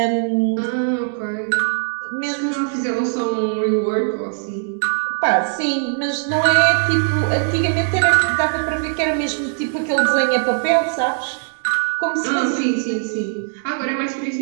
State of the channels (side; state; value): left; silent; digital silence